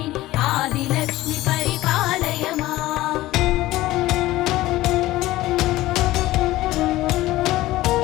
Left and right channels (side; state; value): right; quieter; 17.0 dB